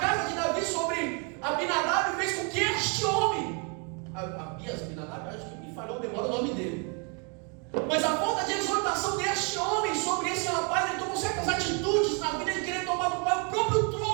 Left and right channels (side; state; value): left; quieter; 36.0 dB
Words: de Davi sobre Abinadab fez com que este homem, Abinadab, acho que me falhou, demora o nome dele, mas a falta de exortação deste homem sobre esse rapaz, ele tomou certas atitudes na vida de querer tomar do pai o próprio